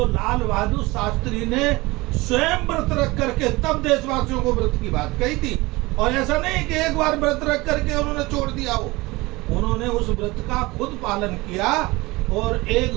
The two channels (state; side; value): quieter; left; 21.9 dB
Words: लाल बहादुर शास्त्री ने स्वयं व्रत रख करके तब देशवासियों को व्रत की बात कही थी। और ऐसा नहीं कि एक बार व्रत रख करके उन्होंने छोड़ दिया हो, उन्होंने उस व्रत का खुद पालन किया। और